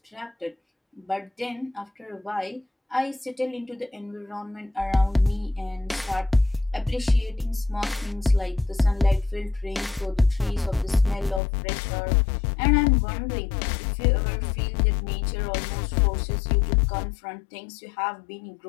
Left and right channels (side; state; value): right; drops out; at 11.4 s